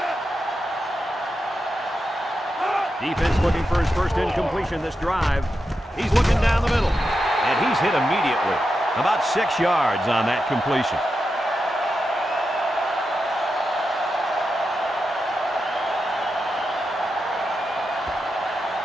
Defense looking for his first incompletion this drive. He's looking down the middle, and he's hit immediately. About 6 yards on that completion.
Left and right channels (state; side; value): normal; both; correlation 0.88